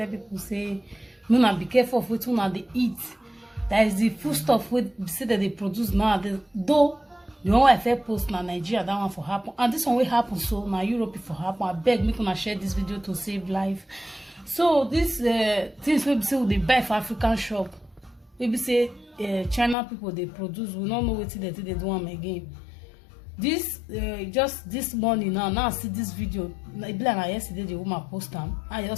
people say no, be careful of wetin una dey eat. That is the food stuff wey say that they produce now. Though the one I fair post na Nigeria, that one for happen, and this one will happen so na Europe for happen. I beg make una share this video to save life. So this things wey be say we dey buy for African shop, maybe say China people they produce, we don't know what they do am again. This just this morning now I see this video. Like yesterday the woman post am. I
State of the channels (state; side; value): drops out; right; at 19.8 s